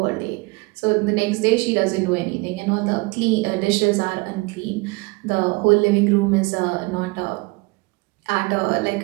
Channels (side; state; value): left; quieter; 25.6 dB